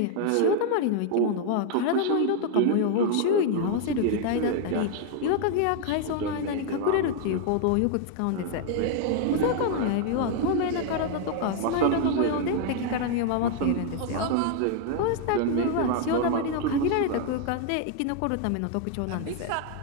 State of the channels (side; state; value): both; different; correlation 0.00